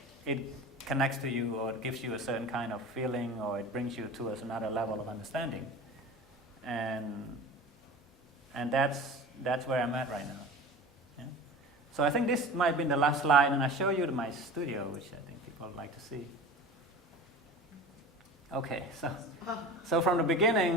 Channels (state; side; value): normal; both; correlation 0.36